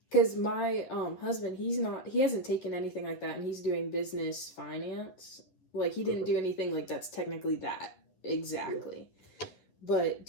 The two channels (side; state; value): right; late; 11 ms